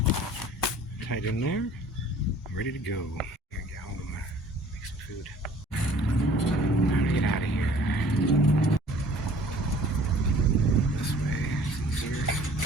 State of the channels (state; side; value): normal; both; correlation 0.51